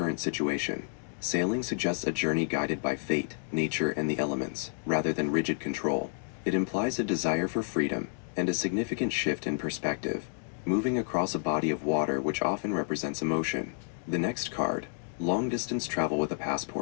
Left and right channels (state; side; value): silent; right; digital silence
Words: situation. Sailing suggests a journey guided by fate, nature, and the elements, rather than rigid control. It implies a desire for freedom and a significant shift in perspective, moving across a body of water which often represents emotion. The next card, Long Distance Travel with a